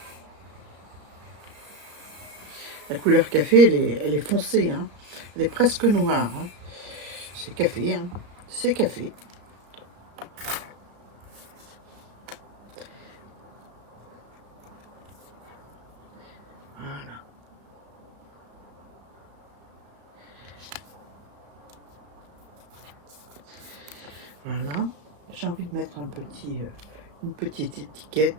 La couleur café, elle est foncée. Hein. Elle est presque noire. Hein. C'est café. Hein. C'est café. Voilà. Voilà. J'ai envie de mettre une petite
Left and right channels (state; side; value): late; left; 34 ms